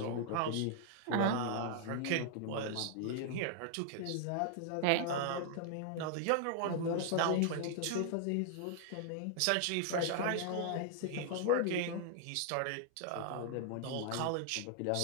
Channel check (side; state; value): both; different; correlation 0.00